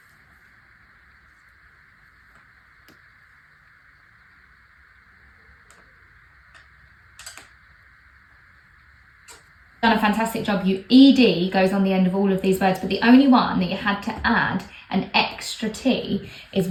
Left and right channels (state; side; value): identical; both; correlation 1.00